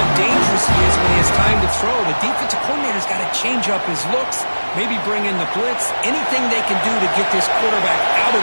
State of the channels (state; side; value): inverted; both; correlation -1.00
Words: dangerous he is when he has time to throw. The defensive coordinator's got to change up his looks, maybe bring in the blitz, anything they can do to get this quarterback out of